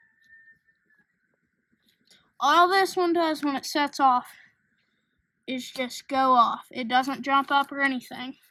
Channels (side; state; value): both; identical; correlation 1.00